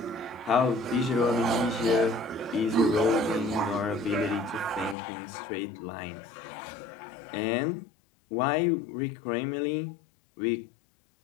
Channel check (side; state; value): right; drops out; at 5.0 s